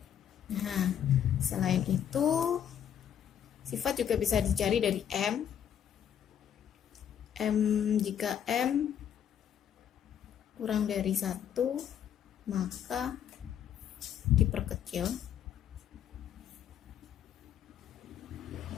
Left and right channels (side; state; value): right; quieter; 9.3 dB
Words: Nah, selain itu, sifat juga bisa dicari dari M. Jika M kurang dari 1, maka diperkecil.